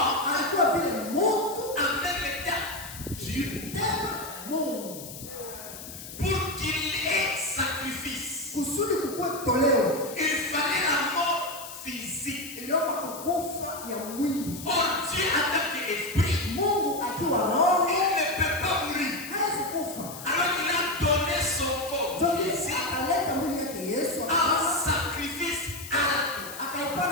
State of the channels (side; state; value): left; noise; hiss, 12 dB below the sound